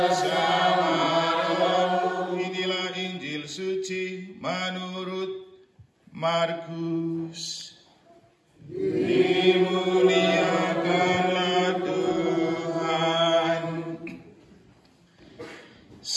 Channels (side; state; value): both; identical; correlation 1.00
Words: Inilah Injil suci menurut Markus. Dimuliakanlah Tuhan.